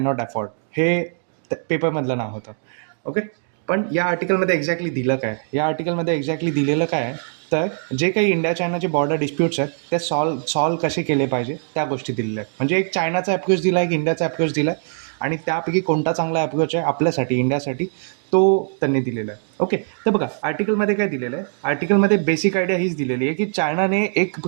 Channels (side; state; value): left; silent; digital silence